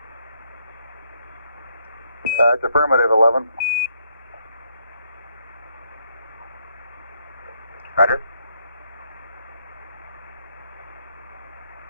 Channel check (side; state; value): both; inverted; correlation -0.73